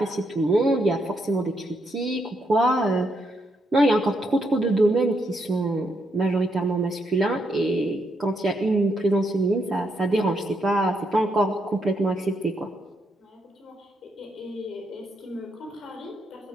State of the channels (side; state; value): both; normal; correlation 0.78